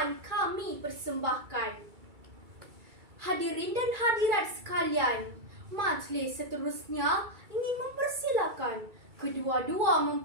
kami persembahkan. Hadirin dan hadirat sekalian, majlis seterusnya ingin mempersilakan kedua-dua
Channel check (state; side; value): late; left; 2.3 ms